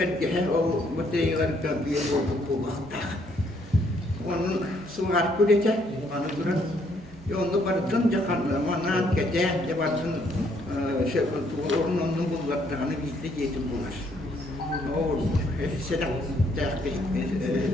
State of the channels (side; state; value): both; normal; correlation 0.69